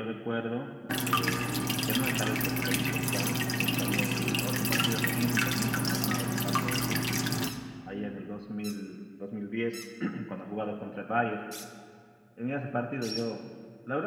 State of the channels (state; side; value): identical; both; correlation 1.00